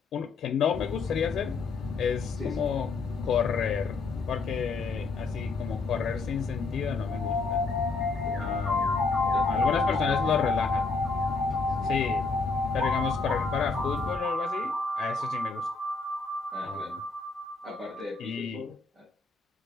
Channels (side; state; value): right; quieter; 4.1 dB